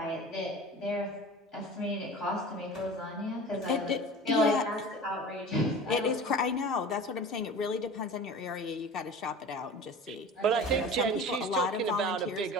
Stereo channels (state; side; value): normal; both; correlation 0.37